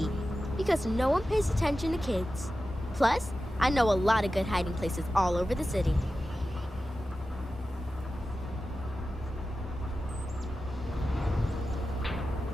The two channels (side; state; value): both; normal; correlation 0.93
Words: because no one pays attention to kids. Plus, I know a lot of good hiding places all over the city.